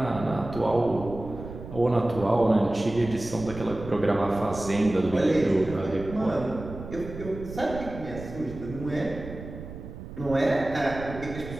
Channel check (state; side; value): noise; right; rumble, 12 dB below the sound